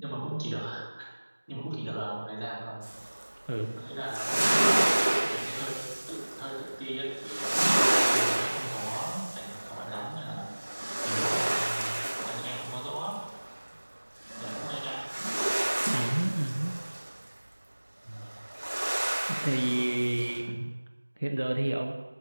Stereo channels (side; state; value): both; inverted; correlation -1.00